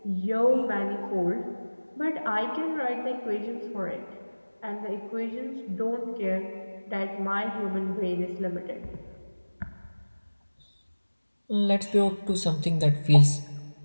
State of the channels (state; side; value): inverted; both; correlation -1.00